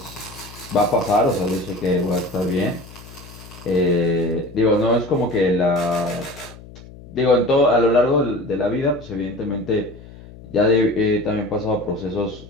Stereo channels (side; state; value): left; noise; hum, 18 dB below the sound